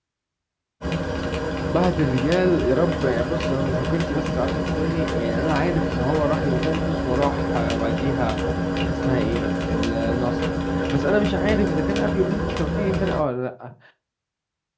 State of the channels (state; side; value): identical; both; correlation 1.00